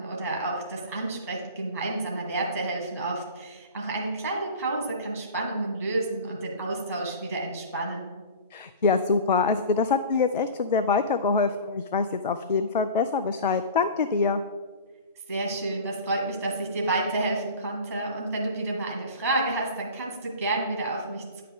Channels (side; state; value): both; inverted; correlation -0.36